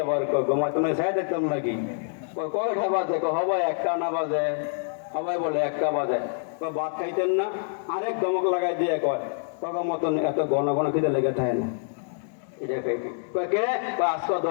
আবার ঘুমাই তুমি চাই দেখতাম নাকি? কয়টা বাজে? হবাই 1টা না বাজে, সবাই বলে 1টা বাজে। ভাত খাইতেন না? আরেক ধমক লাগাই দিয়ে কয় তখন মতন এত ঘন ঘন খিদে লেগে থাকে না। এটা কে আজকে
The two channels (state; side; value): silent; right; digital silence